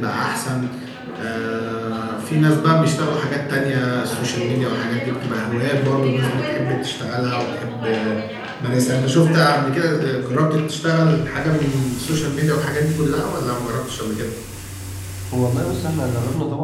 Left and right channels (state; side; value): identical; both; correlation 1.00